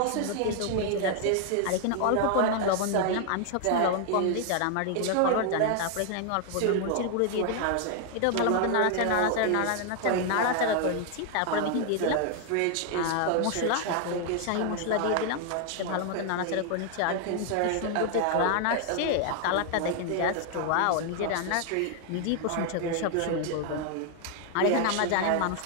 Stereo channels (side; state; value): both; different; correlation 0.00